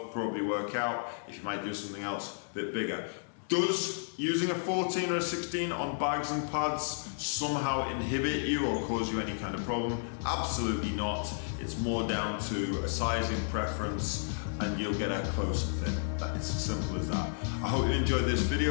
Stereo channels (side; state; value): right; silent; digital silence